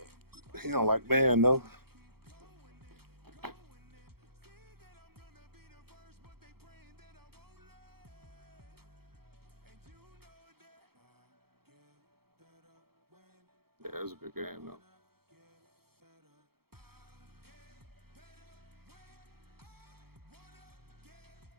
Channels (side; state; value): left; late; 0.95 ms